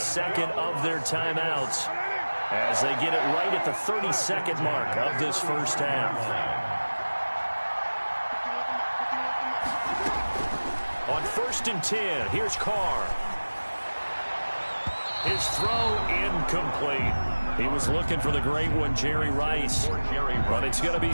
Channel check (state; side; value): inverted; both; correlation -1.00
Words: of their timeouts as they get it right at the 30-second mark of this first half. On 1st and 10, here's Carr. His throw incomplete. He was looking for the great one, Jerry Rice. But it's going to be